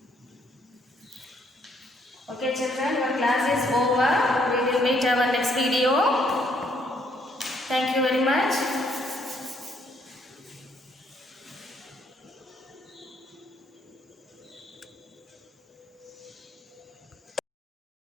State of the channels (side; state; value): both; normal; correlation 0.69